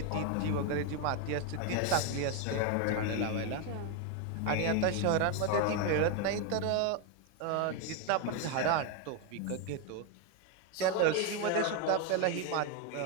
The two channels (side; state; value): both; different; correlation 0.02